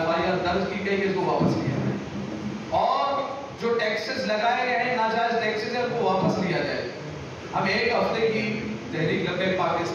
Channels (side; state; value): both; identical; correlation 1.00